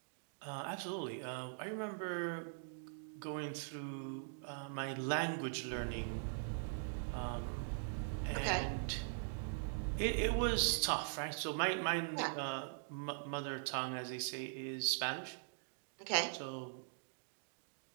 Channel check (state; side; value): silent; left; digital silence